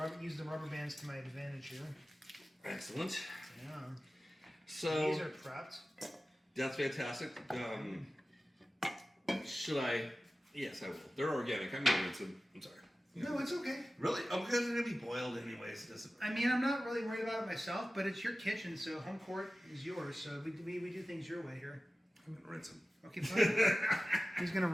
use the rubber bands to my advantage here. Excellent. Yeah. So these are prepped. That's fantastic. Should I? Yes, I will. They're organic. I'm gonna rinse them. I'm sorry. No, it's okay. Really? Oh, because they're gonna be boiled anyways. It doesn't. I mean, I'm not really worried about it myself, but it's your kitchen, so home court is yours. So we do things your way here. I'm gonna rinse them. Okay, fine. He's gonna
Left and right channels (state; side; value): normal; both; correlation 0.95